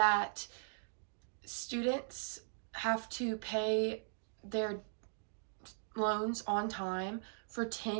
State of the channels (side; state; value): left; silent; digital silence